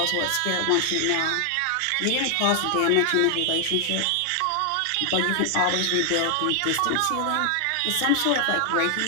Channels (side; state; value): both; different; correlation 0.00